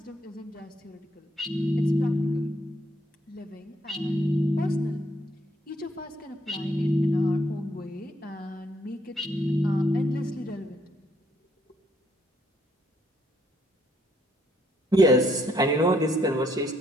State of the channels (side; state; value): both; normal; correlation 0.71